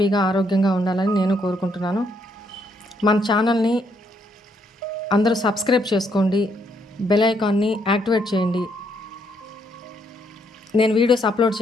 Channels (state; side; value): normal; both; correlation 0.73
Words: ఆరోగ్యంగా ఉండాలని నేను కోరుకుంటున్నాను. మన ఛానల్ని అందరూ సబ్స్క్రైబ్ చేసుకోండి, బెల్ ఐకాన్ని యాక్టివేట్ చేయండి. నేను వీడియోస్